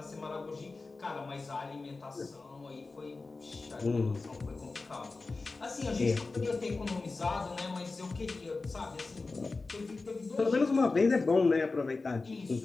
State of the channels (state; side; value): quieter; right; 3.7 dB